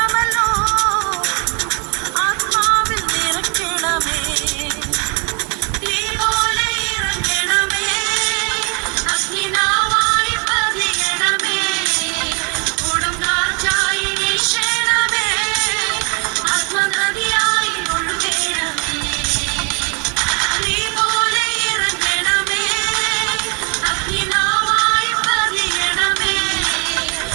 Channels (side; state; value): left; quieter; 34.6 dB